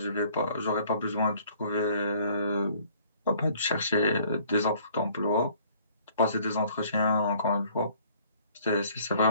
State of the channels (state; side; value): inverted; both; correlation -0.57